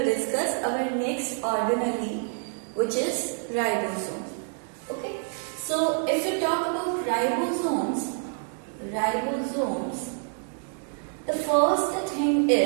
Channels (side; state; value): left; silent; 58 dB below the other